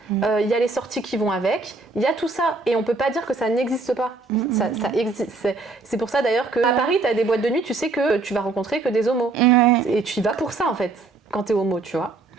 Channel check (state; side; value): quieter; left; 3.7 dB